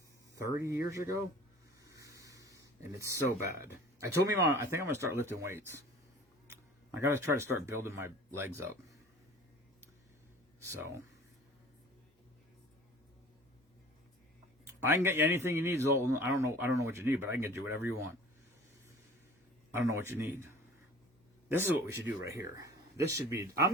30 years ago. And it's so bad. I told me, Mom, I think I'm going to start lifting weights. I got to try to start building my legs up. So, I can get you anything you need, Zoltan. I don't know what you need, but I can get you whatever you want. I don't know what you need. This is what we should do right here. This should be. I'm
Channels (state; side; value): normal; both; correlation 0.45